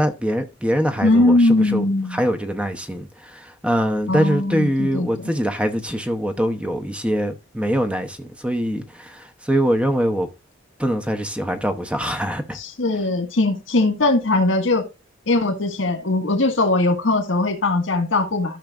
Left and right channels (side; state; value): both; normal; correlation 0.60